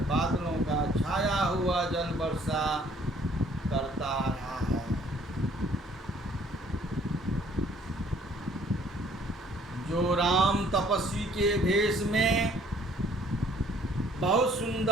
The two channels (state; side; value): normal; both; correlation 0.60